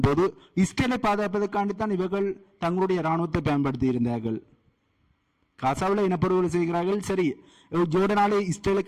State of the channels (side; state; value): both; identical; correlation 1.00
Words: போது இஸ்ரேலை பாதுகாப்பதற்காண்டித்தான் இவர்கள் தங்களுடைய ராணுவத்தை பயன்படுத்தி இருந்தார்கள். காசாவில் இனப்படுகொலை செய்கிறார்கள். சரி, ஜோர்டனாலே